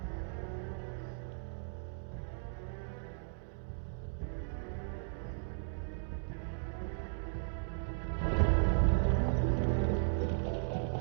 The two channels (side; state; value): left; silent; digital silence